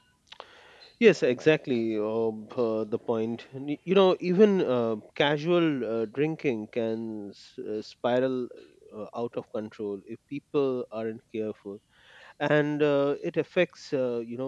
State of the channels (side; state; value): both; identical; correlation 1.00